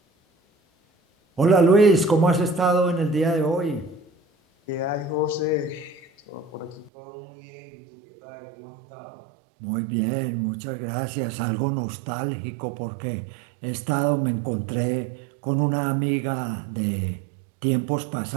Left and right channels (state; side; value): drops out; left; at 6.9 s